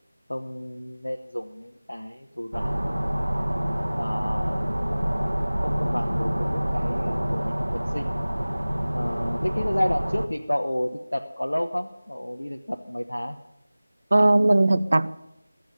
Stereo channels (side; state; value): both; inverted; correlation -0.99